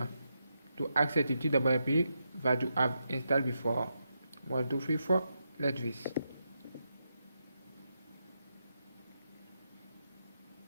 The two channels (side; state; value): both; inverted; correlation -0.85